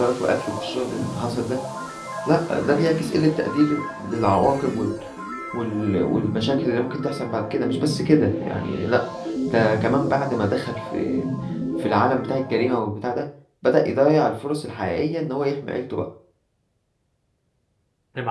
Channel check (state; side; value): identical; both; correlation 1.00